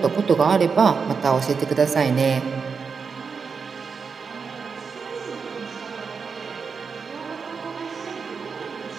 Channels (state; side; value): quieter; left; 5.5 dB